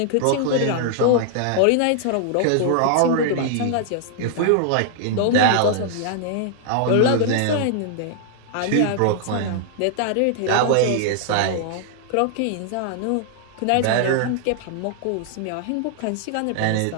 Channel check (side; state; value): both; different; correlation -0.01